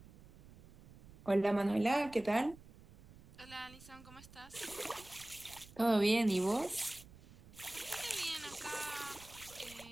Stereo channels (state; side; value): noise; right; rumble, 20 dB below the sound